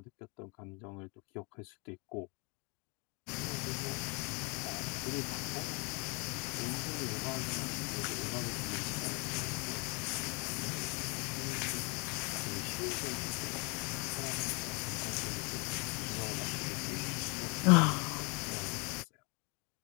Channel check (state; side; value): quieter; right; 31.8 dB